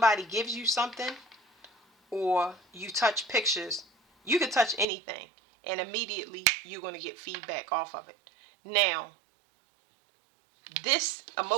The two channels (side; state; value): left; drops out; at 4.9 s